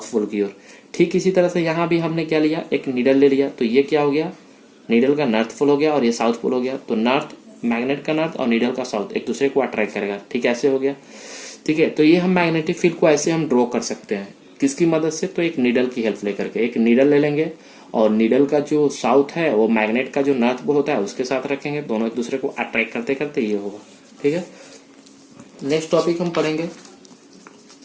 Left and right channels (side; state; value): both; identical; correlation 1.00